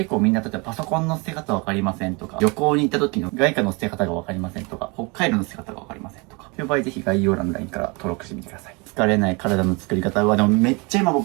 構みんな、例えばパソコンの捨て方わかりませんとか、旅行に行った時の外貨の捨て方がわかりませんとか、北海道の捨て方がわかりませんとか、そういう場合ぜひ概要欄の LINE から登録してみてください。疲れない体の作り方は、でもめっちゃ今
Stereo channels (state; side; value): quieter; left; 29.0 dB